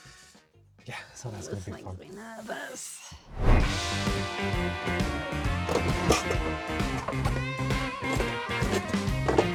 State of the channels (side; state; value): both; identical; correlation 1.00